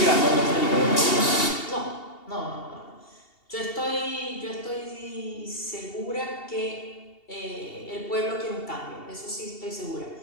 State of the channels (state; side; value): late; right; 2.7 ms